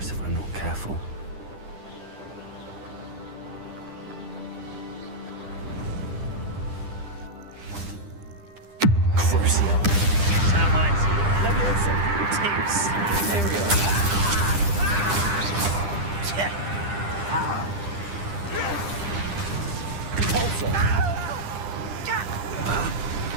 if I'm not careful. Crucial. Termites. Leviosa. Tips. Imperial. Repulsor.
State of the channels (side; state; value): left; late; 10 ms